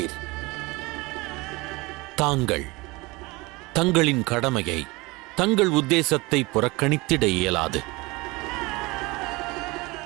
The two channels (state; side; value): quieter; left; 23.7 dB